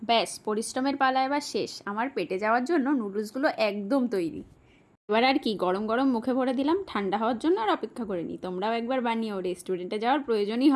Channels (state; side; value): identical; both; correlation 1.00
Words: ব্যাস, পরিশ্রমের পালা এবার শেষ। আমার পেটে যাওয়ার জন্য নুডলসগুলো একদম তৈরি। এবার আর কি, গরম গরম মুখে ভরে দিলাম, ঠান্ডা হওয়ার জন্য আর অপেক্ষা করে নি। তোমরাও একবার বানিও, রেস্টুরেন্টে যাওয়ার প্রয়োজনই